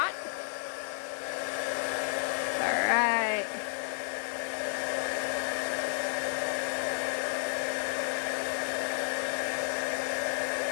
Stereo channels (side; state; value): right; silent; 57 dB below the other